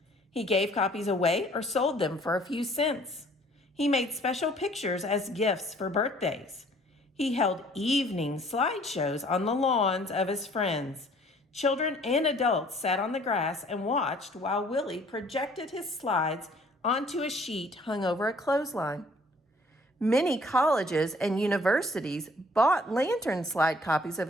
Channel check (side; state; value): both; normal; correlation 0.57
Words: He gave copies away or sold them for a few cents. He made special pictures as gifts for birthdays. He held evening slideshows on the lawns of his friends. Children and adults sat on the grass and watched while Willie projected his slides onto a sheet hung over a clothesline. Many colleges and universities bought lantern slide copies of